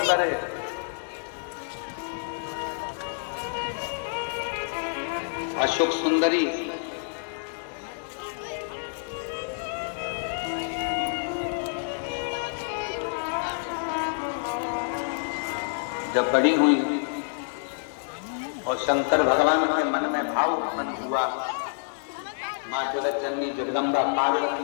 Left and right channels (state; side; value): silent; right; digital silence